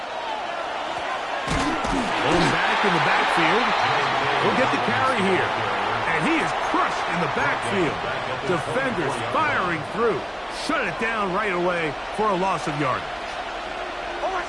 Going back in the backfield. He'll get the carry here, and he is crushed in the backfield. Defenders firing through. Shut it down right away for a loss of yardage.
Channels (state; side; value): identical; both; correlation 1.00